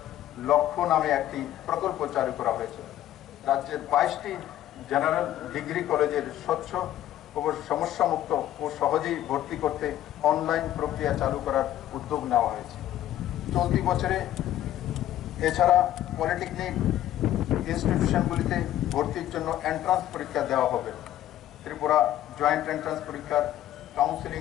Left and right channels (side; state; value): right; quieter; 12.8 dB